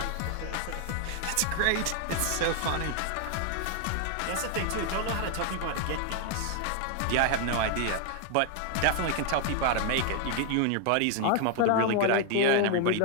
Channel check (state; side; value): different; both; correlation 0.00